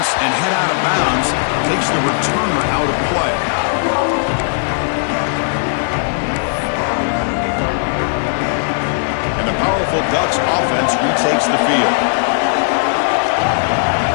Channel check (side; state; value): right; silent; 68 dB below the other